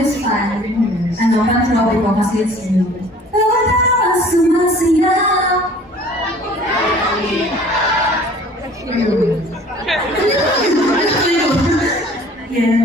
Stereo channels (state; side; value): normal; both; correlation 0.50